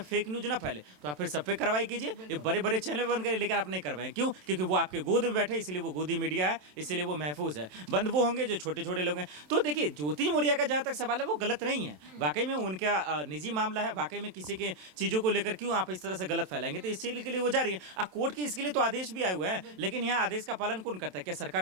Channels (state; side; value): late; left; 27 ms